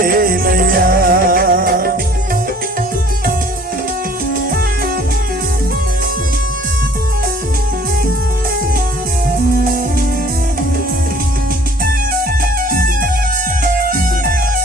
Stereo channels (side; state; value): both; normal; correlation 0.53